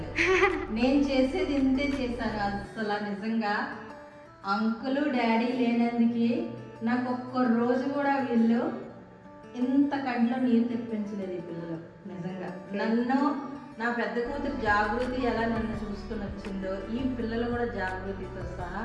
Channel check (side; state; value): both; identical; correlation 1.00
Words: నేను చేసేది ఇంతే చేశాను. అసలు నిజంగా అంకులు డాడీ లేనందుకు నాకు ఒక్క రోజు కూడా వీళ్ళు ఇంత కంట్లో నీరు తెప్పించలేదు ఈ పిల్లలు. నిజంగా నన్ను నా పెద్ద కూతురు జాగృతి ఎలా నన్ను చూసుకుని వచ్చిందో ఈ పిల్లలు కూడా జాగృతితో సహా